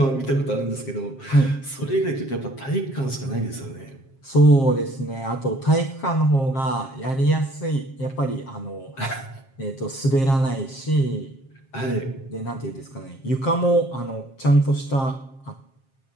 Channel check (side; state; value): right; late; 7.5 ms